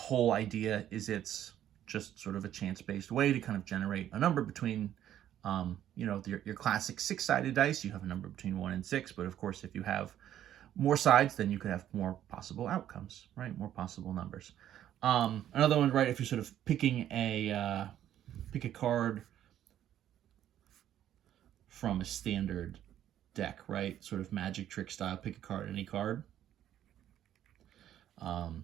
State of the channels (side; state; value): left; quieter; 11.3 dB